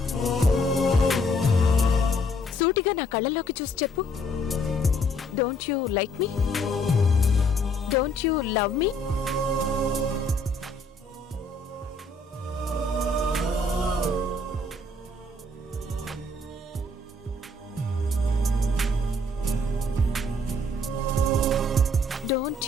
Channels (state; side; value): normal; both; correlation 0.64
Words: సూటిగా నా కళ్ళల్లోకి చూసి చెప్పు. Don't you like me? Don't you love me? Don't